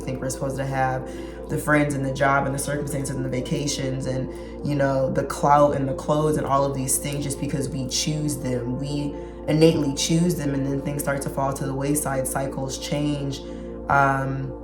we're supposed to have the friends and the job and the circumstances and the vacations and, you know, the clout and the clothes and all of these things just because we choose them. We innately choose them, and then things start to fall to the wayside, cycles change,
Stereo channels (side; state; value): both; identical; correlation 1.00